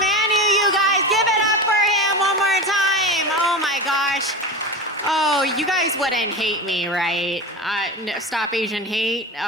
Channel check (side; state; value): both; normal; correlation 0.25